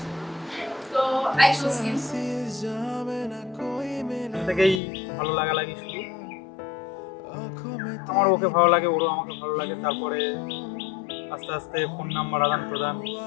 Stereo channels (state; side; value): drops out; right; at 4.8 s